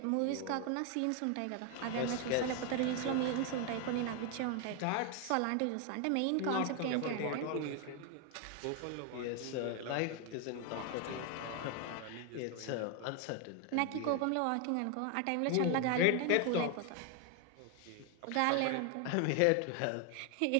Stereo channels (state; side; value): different; both; correlation 0.01